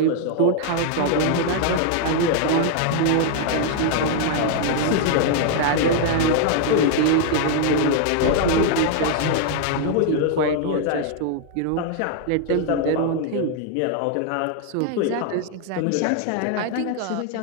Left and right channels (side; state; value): both; different; correlation 0.00